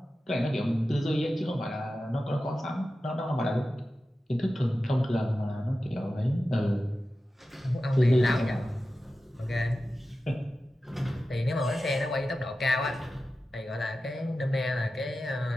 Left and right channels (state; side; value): normal; both; correlation 0.93